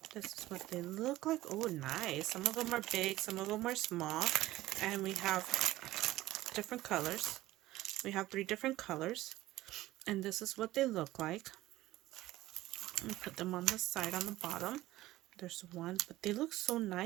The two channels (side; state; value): left; quieter; 16.5 dB